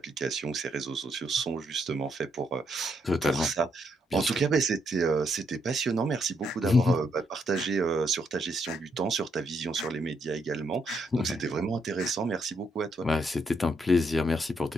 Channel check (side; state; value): both; normal; correlation 0.76